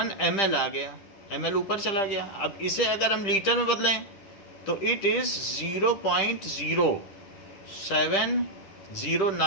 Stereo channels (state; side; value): late; right; 10 ms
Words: ml आ गया, ml ऊपर चला गया। अब इसे अगर हम लीटर में बदलें तो इट इज